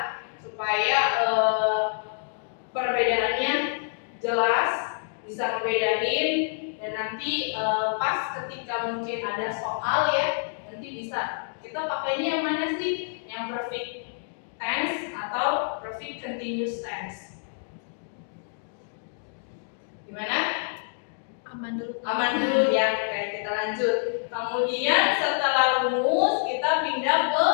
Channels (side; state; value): right; silent; digital silence